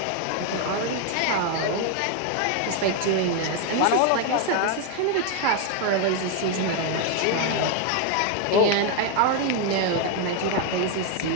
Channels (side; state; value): both; different; correlation 0.01